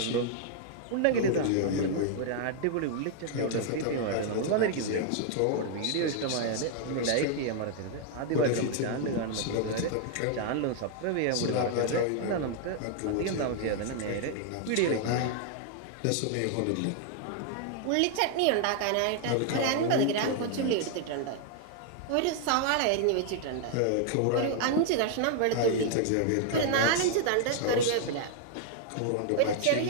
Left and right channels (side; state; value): both; different; correlation 0.00